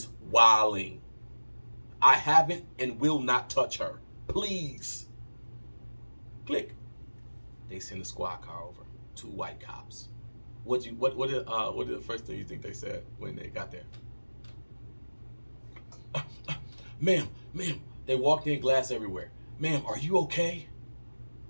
wilding. I haven't and will not touch her. Please. Click. They send a squad car over. 2 white cops. What did the first thing you think they said when they got there? Ma'am. They walked in, glass everywhere. Ma'am, are you okay?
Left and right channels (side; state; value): both; inverted; correlation -1.00